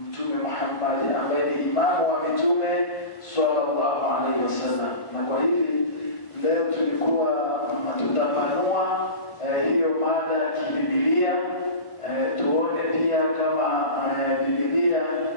Mtume Muhammad ambaye ni imamu wa mitume sallallahu alaihi wasallam. Na kwa hivi leo tulikuwa tutapanua hiyo mada ya kibibilia, tuone pia kama Biblia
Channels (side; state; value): right; late; 1.3 ms